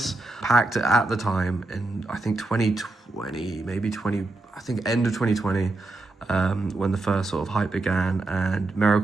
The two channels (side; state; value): left; quieter; 3.1 dB